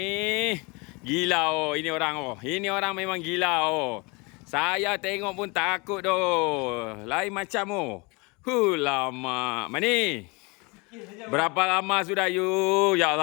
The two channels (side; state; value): right; quieter; 28.1 dB